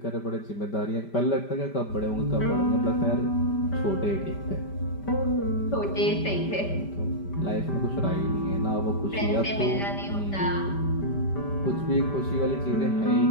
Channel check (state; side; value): late; right; 5.1 ms